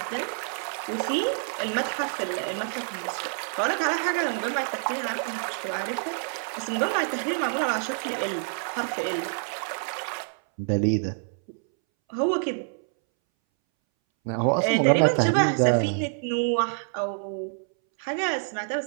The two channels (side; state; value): left; silent; 60 dB below the other